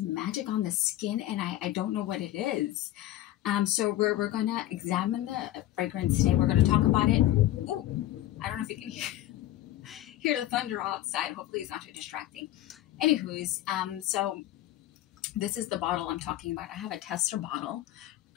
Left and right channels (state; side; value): quieter; right; 14.4 dB